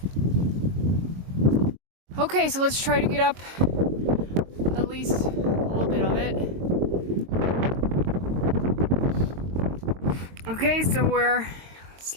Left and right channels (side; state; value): left; late; 22 ms